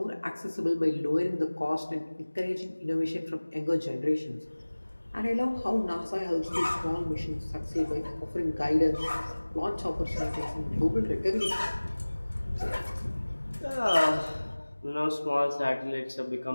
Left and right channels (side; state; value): both; inverted; correlation -1.00